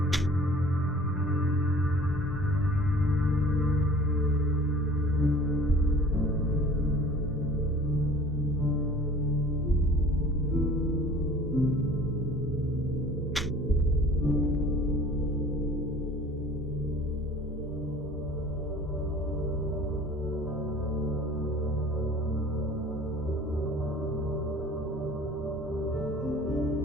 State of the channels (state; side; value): normal; both; correlation 0.48